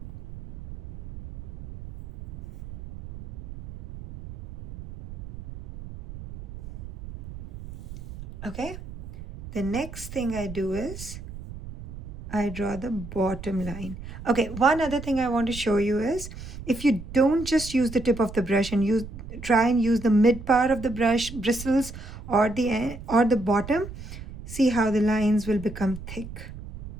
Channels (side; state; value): right; noise; rumble, 12 dB below the sound